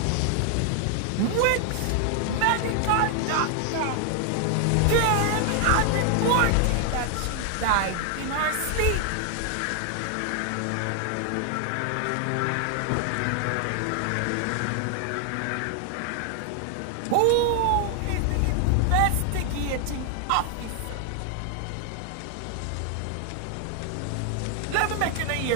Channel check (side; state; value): both; different; correlation 0.00